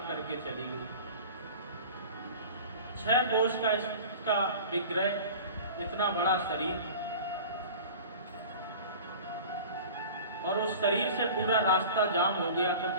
करके चली गई। 6 कोष का इसका विग्रह, इतना बड़ा शरीर, और उस शरीर से पूरा रास्ता जाम हो गया, तो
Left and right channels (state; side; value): inverted; both; correlation -0.38